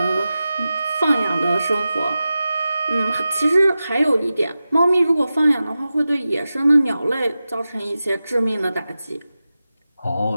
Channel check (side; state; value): both; inverted; correlation -0.94